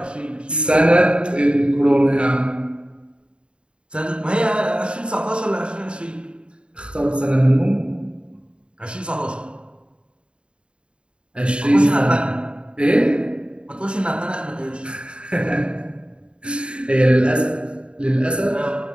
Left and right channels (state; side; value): late; left; 0.054 ms